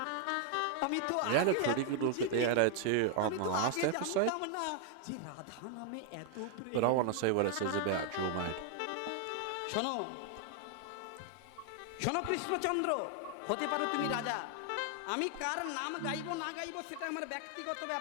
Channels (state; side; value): different; both; correlation 0.00